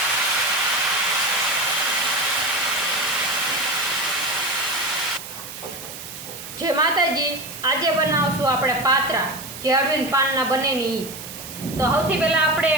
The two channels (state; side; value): noise; right; hiss, 12 dB below the sound